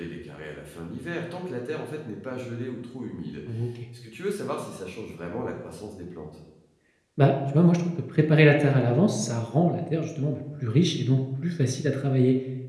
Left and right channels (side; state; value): both; identical; correlation 1.00